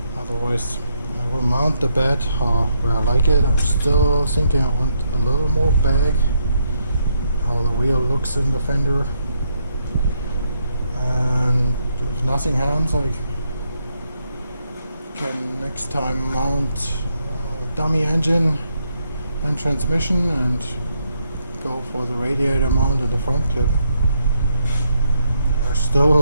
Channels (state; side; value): inverted; both; correlation -0.76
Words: Otherwise, I will mount the bed where I like it. I'm still thinking I want a little more back, how the wheel looks in the fender. And if nothing happens, I can next time mount dummy engine and transmission and go for the radiator mount and the front clip. There's still